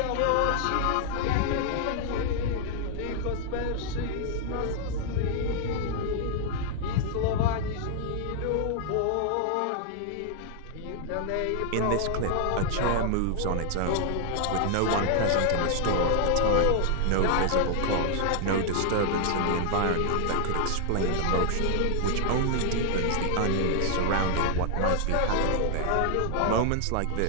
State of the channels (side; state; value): both; different; correlation 0.00